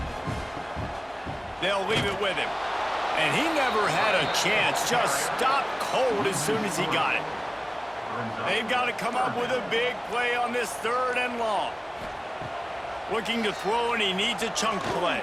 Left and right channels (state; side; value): identical; both; correlation 1.00